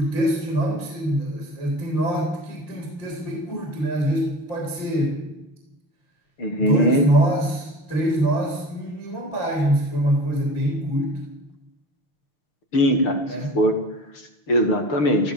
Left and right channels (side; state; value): right; late; 6.6 ms